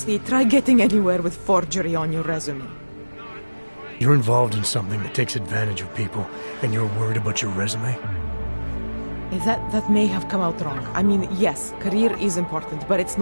try getting anywhere with forgery on your resume. You're involved in something that takes advantage of people, and you're worried about your resume? That may have come out wrong. I mean, yes, career is important, but it's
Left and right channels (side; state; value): both; inverted; correlation -1.00